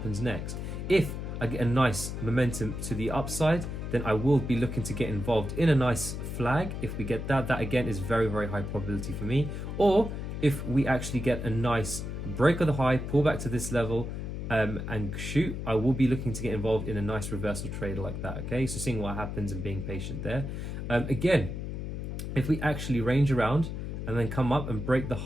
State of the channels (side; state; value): left; noise; hum, 5 dB below the sound